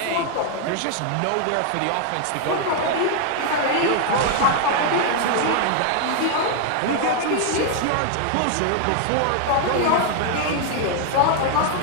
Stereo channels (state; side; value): different; both; correlation 0.00